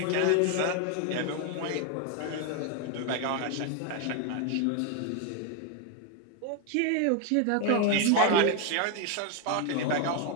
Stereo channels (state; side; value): different; both; correlation 0.01